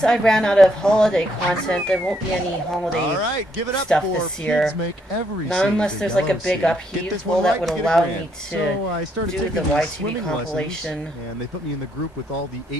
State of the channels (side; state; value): both; normal; correlation 0.73